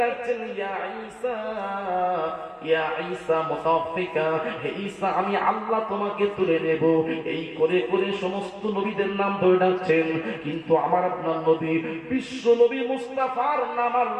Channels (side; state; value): both; identical; correlation 1.00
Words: ডাকছেন, ইয়া ঈসা, ইয়া ঈসা মুতাওফিকা, হে ঈসা আমি আল্লাহ তোমাকে তুলে নেব। এই করে করে সমস্ত নবীদের নাম ধরে ডাকছেন। কিন্তু আমার আপনার নবী, বিশ্ব নবী মুস্তাফার নাম